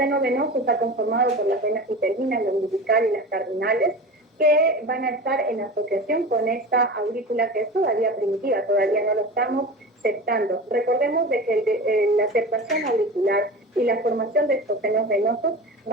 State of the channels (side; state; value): both; normal; correlation 0.32